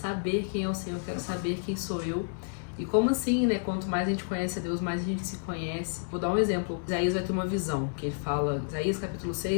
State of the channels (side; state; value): right; silent; 58 dB below the other